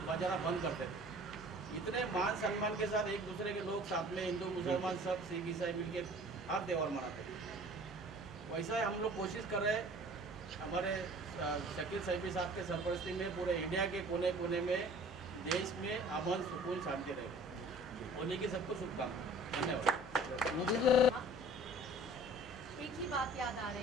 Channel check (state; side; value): normal; both; correlation 0.48